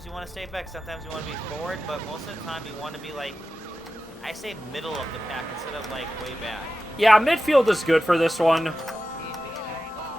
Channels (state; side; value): normal; both; correlation 0.93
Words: you want to stay back, sometimes you want to be forward, but most of the time you want to be like, I say middle of the pack instead of like way back. Yeah, midfield is good for this one.